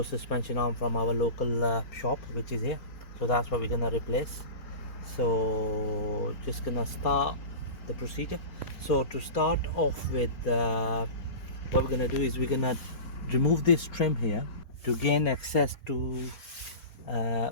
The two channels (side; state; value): right; late; 4.3 ms